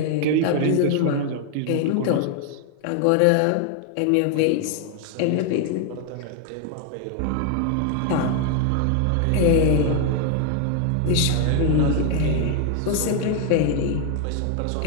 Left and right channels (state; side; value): different; both; correlation 0.00